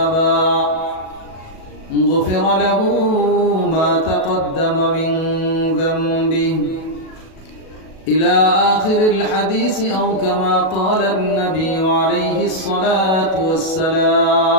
غفر له ما تقدم من ذنبه إلى آخر الحديث أو كما قال النبي عليه الصلاة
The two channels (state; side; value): late; right; 37 ms